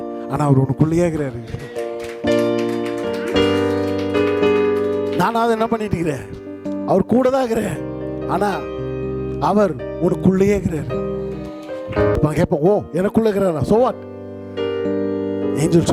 ஆனா அவர் உனக்குள்ளேயே இருக்கிறாரு. நானாவது என்ன பண்ணிட்டு இருக்கிறேன், அவர் கூட தான் இருக்கிறேன், ஆனா அவர் உனக்குள்ளேயே இருக்கிறாரு. கேட்போம், ஓ எனக்குள்ள இருக்கிறாரா, சோ வாட்? ஏஞ்சல்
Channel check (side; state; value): both; identical; correlation 1.00